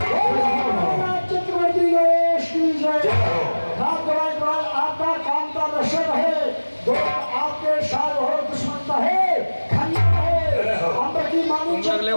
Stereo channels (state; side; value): inverted; both; correlation -1.00